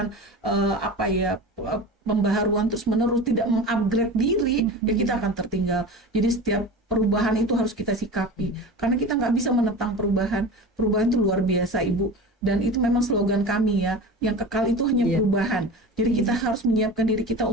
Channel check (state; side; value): normal; both; correlation 0.32